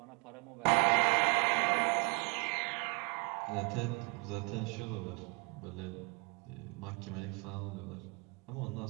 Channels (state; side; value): quieter; left; 30.6 dB